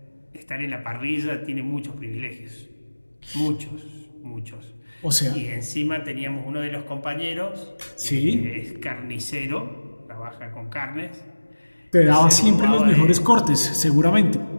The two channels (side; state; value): both; inverted; correlation -1.00